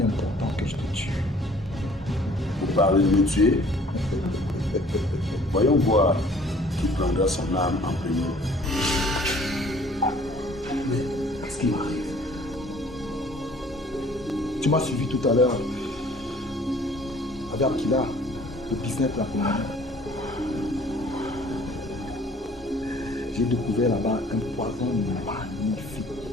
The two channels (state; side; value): normal; both; correlation 0.54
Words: est important que je te tue. Vous parlez de me tuer? Voyons voir qui prendra son âme en premier. Mais ce qui m'arrive, tu m'as suivi tout à l'heure avec Akila, le business de la Colombie. J'ai découvert là-bas un poison